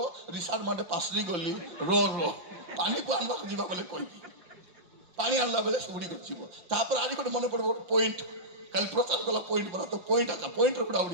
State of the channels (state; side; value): late; left; 5.7 ms